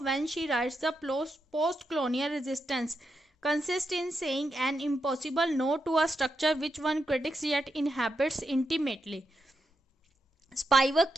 when she writes the post-colonial resistance consists in saying an impossible no to a structure which one critics yet inhabits intimately। स्पाइवक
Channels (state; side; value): normal; both; correlation 0.84